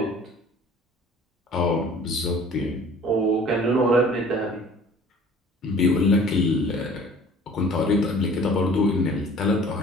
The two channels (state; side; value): normal; both; correlation 0.49